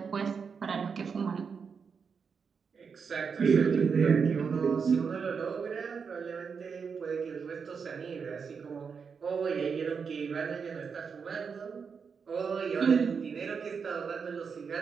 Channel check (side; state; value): left; quieter; 5.9 dB